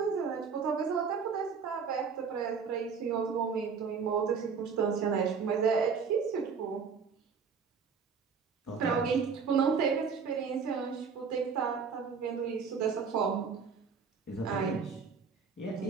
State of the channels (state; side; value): quieter; left; 5.8 dB